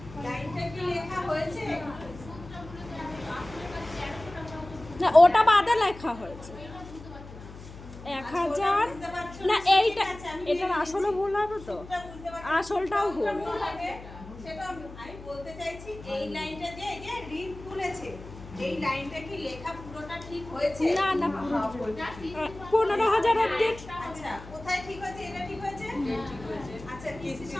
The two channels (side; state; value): left; noise; hum, 16 dB below the sound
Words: হয়েছে? না, ওটা বাদে লেখা হয়েছে 1,000। না এইটা, এটার আসলে ভুল হবে তো, আসলটাও ভুল। সেটা আমি বলতে চাইছি, এই লাইনটা যে এই যে ঋণ তুলেছে, এই লাইনটা কি লেখা পুরোটা ঠিক হয়েছে? না না, 15,000 অবধি। আচ্ছা, কোথায় ঠিক হয়েছে? এটা ঠিক হয়েছে? ঠিক হয়েছে। আচ্ছা, কিস্তির